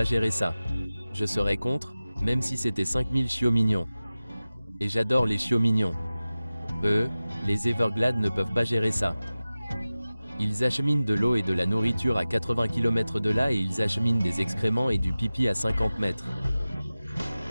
gérer ça. Je serais contre, même si c'était 5000 chiots mignons. Et j'adore les chiots mignons. Les Everglades ne peuvent pas gérer ça. Ils acheminent de l'eau et de la nourriture à 80 km de là et ils acheminent des excréments et du pipi à 50 mètres.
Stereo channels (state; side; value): inverted; both; correlation -0.96